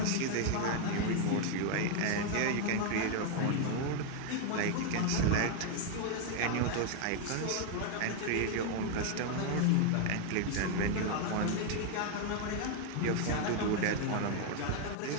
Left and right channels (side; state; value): both; different; correlation 0.01